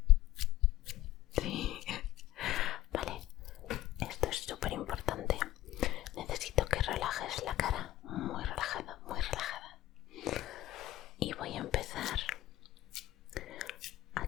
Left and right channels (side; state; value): right; quieter; 15.2 dB